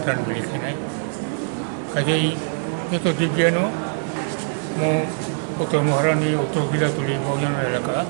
त्राण बिलिखायनाय काजै यथ' दिव्यानो मो कोक्टमा हारानि उत्तर गिलातुलि बावजान एलाका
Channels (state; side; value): silent; left; 64 dB below the other